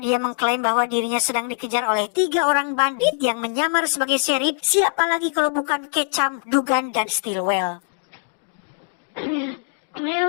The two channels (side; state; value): right; silent; digital silence